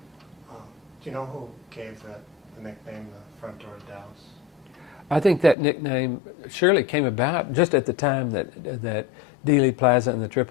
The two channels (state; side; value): drops out; right; at 5.6 s